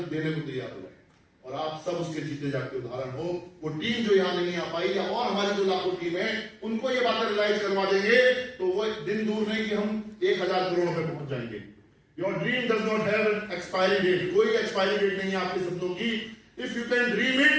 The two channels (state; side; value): identical; both; correlation 1.00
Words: को तैयार हो जाए। और आप सब उसके जीते जाके उदाहरण हो। वो टीम जो यहाँ नहीं आ पाई, या और हमारी जो लाखों टीम है, उनको ये बातें रियलाइज करवा देंगे, तो वो दिन दूर नहीं कि हम 1000 करोड़ पे पहुंच जाएंगे। Your dream does not have an expiry date. कोई एक्सपायरी डेट नहीं है आपके सपनों की। If you can dream it,